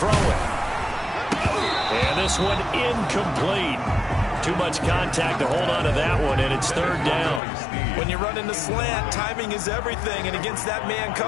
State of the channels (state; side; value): drops out; right; at 7.4 s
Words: it. And this one incomplete. Too much contact to hold on to that one, and it's third down. When you run in the slant, timing is everything, and against that man